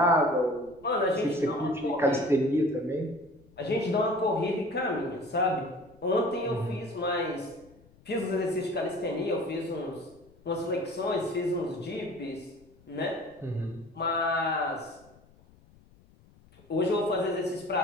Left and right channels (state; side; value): noise; left; rumble, 27 dB below the sound